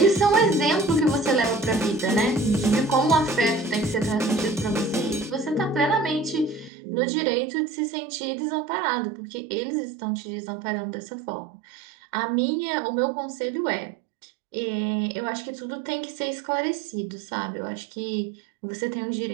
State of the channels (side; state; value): left; drops out; at 6.7 s